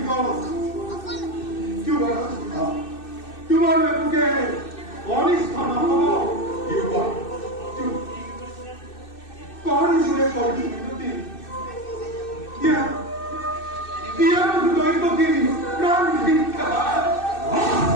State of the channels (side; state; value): right; late; 2.6 ms